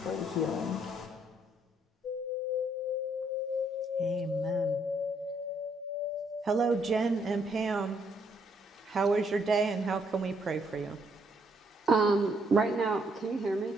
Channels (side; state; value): both; normal; correlation 0.70